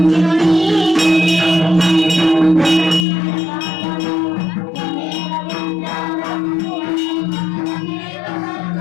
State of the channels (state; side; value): drops out; right; at 3.1 s